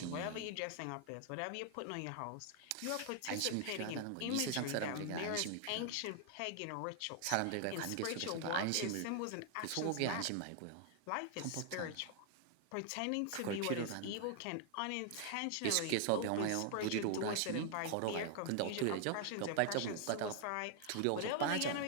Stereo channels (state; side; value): different; both; correlation 0.00